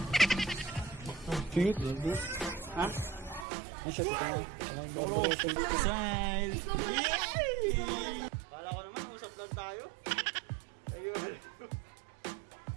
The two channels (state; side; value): drops out; left; at 3.5 s